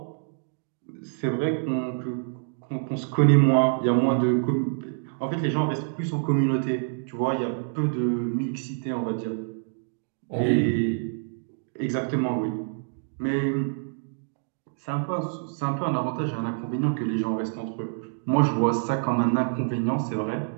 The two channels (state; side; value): silent; left; digital silence